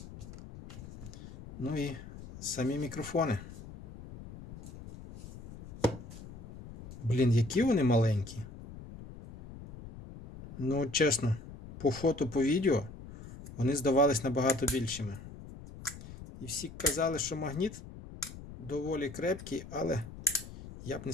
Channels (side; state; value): left; noise; rumble, 14 dB below the sound